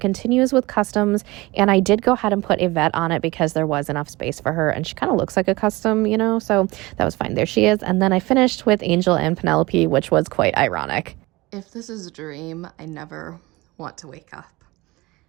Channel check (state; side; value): quieter; left; 21.7 dB